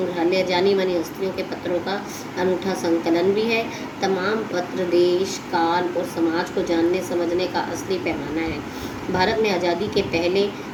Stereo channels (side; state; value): both; identical; correlation 1.00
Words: जानी मानी हस्तियों के पत्रों का अनूठा संकलन भी है। तमाम पत्र देश, काल और समाज को जानने समझने का असली पैमाना है। भारत में आज़ादी के पहले